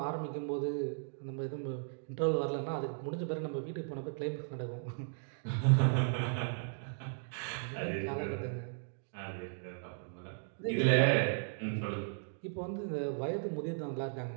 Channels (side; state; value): left; silent; digital silence